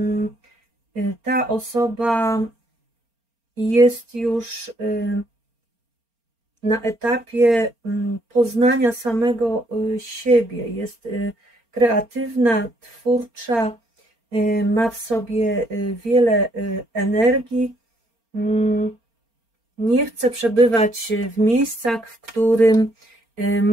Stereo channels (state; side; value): late; left; 4.3 ms